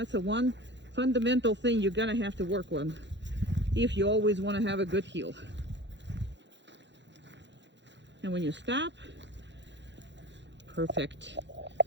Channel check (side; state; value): left; late; 0.52 ms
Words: the one fundamental thing you're gonna have to work on if you always want to have a good heel. And when you stop, perfect.